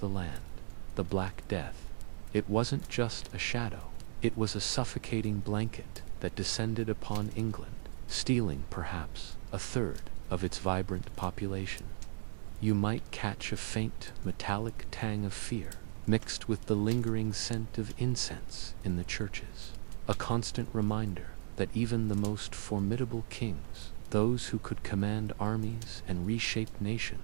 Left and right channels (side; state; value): left; silent; digital silence